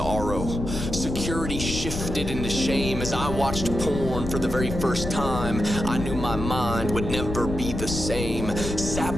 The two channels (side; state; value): left; noise; rumble, 5 dB below the sound